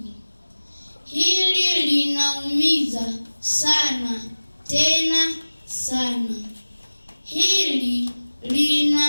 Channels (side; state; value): both; inverted; correlation -1.00